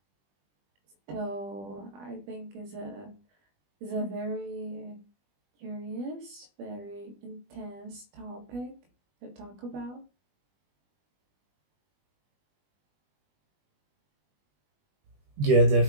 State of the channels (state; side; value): late; left; 20 ms